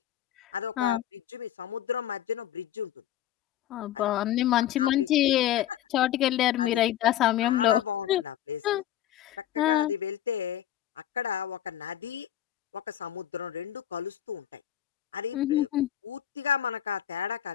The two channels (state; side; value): quieter; right; 11.6 dB